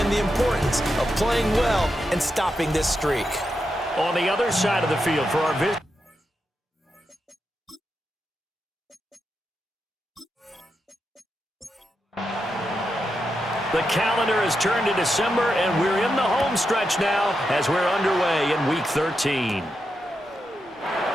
the importance of playing well and stopping this streak. On the other side of the field for our visitors. The calendar has turned to December, and we're in the home stretch now as we're underway in Week 13.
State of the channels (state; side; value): normal; both; correlation 0.86